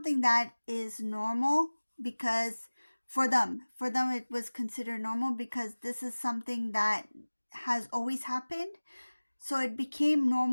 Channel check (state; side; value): inverted; both; correlation -1.00